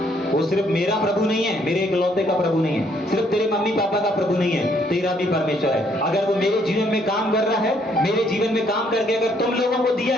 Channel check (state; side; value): normal; both; correlation 0.68